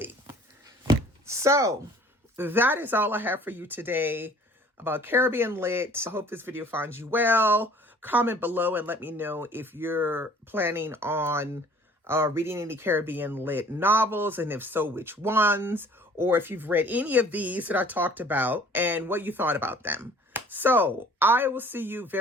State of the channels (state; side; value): normal; both; correlation 0.52